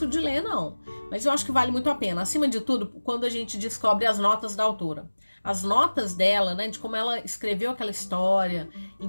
de ler, não. Mas eu acho que vale muito a pena. Acima de tudo, quando a gente descobre as notas da autora. As notas dela, né, de como ela escreveu aquela história,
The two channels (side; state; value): both; inverted; correlation -1.00